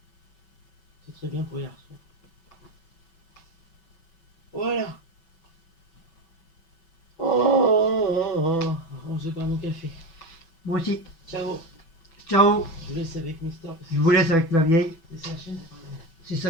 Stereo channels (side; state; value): right; late; 6.1 ms